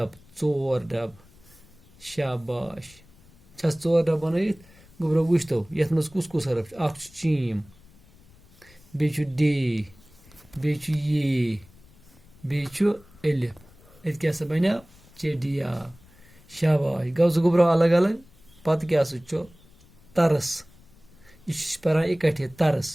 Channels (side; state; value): left; noise; rumble, 26 dB below the sound